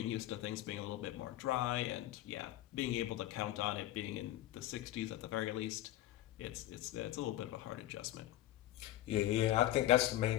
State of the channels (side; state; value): right; quieter; 14.4 dB